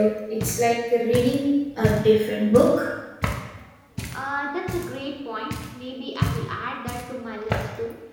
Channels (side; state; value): both; identical; correlation 1.00